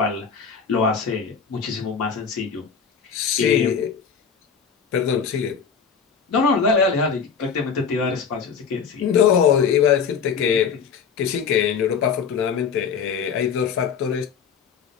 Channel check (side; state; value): right; quieter; 6.4 dB